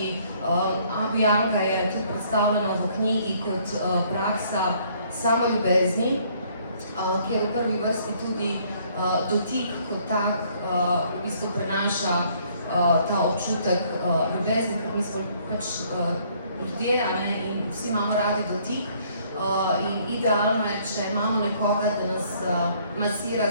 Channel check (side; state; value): both; inverted; correlation -0.63